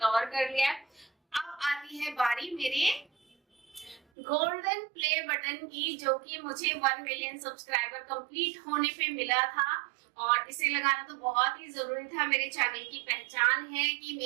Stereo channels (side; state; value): left; drops out; at 4.0 s